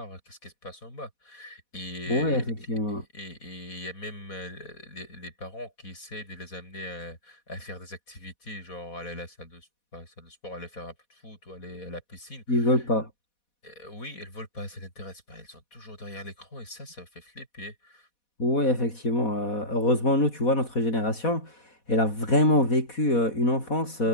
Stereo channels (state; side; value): late; right; 4.1 ms